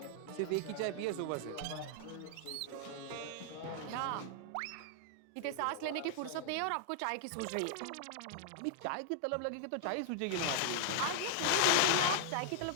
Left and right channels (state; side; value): different; both; correlation -0.01